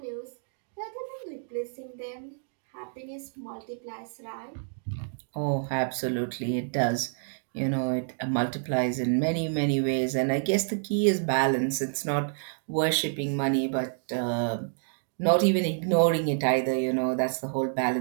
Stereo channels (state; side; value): silent; left; digital silence